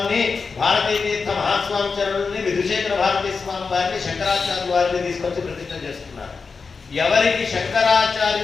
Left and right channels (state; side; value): quieter; right; 4.9 dB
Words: భారతీ తీర్థ మహాస్వామి చరణుల్ని, విధుశేఖర భారతీ స్వామి వారిని, శంకరాచార్యుల వారిని తీసుకొచ్చి ప్రతిష్ఠ చేస్తున్నారు. ఎవరికి